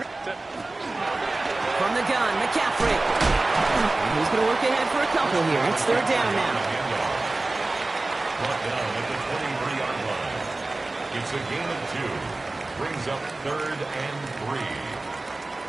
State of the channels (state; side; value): quieter; left; 3.1 dB